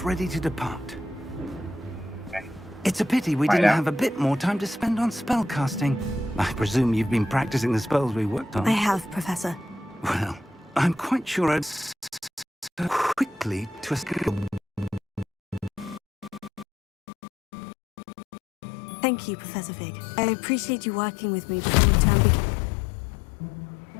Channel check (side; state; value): right; drops out; at 16.7 s